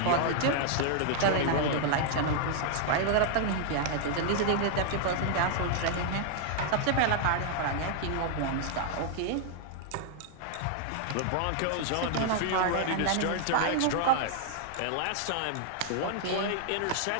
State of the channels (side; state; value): both; different; correlation 0.00